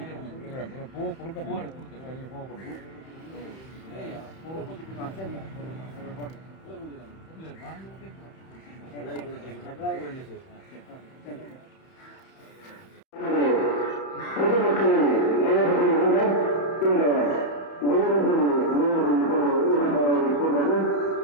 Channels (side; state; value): right; late; 31 ms